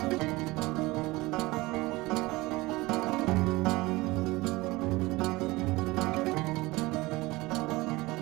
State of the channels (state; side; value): quieter; left; 21.3 dB